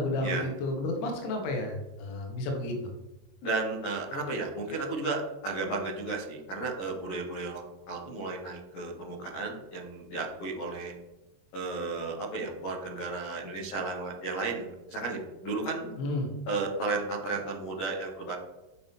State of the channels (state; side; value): late; right; 21 ms